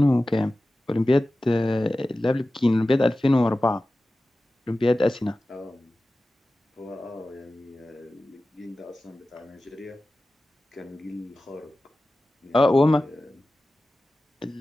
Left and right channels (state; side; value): normal; both; correlation 0.95